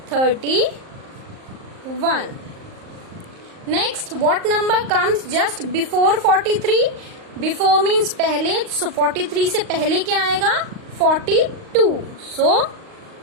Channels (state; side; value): late; left; 38 ms